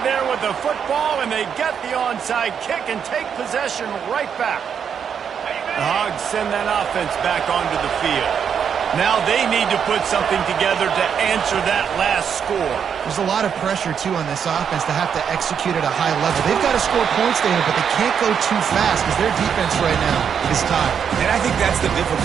there with the football, and they get the onside kick and take possession right back. The Hogs send that offense back onto the field. Now they need to put something together to answer that last score. There's a lot of pressure, too, on this offense to have to execute at a high level. They've got to score points there, but they can't go too fast because their defense right now is tired. And I think that's the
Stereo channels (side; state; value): left; quieter; 7.5 dB